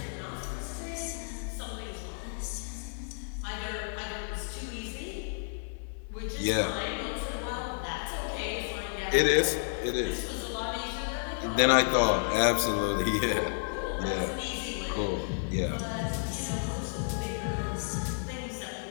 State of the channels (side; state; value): right; silent; digital silence